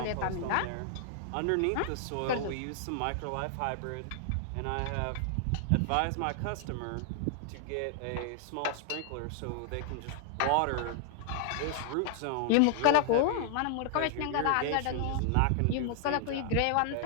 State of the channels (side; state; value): both; different; correlation 0.00